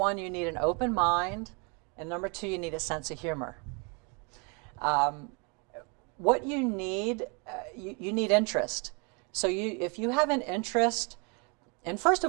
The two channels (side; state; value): left; quieter; 31.6 dB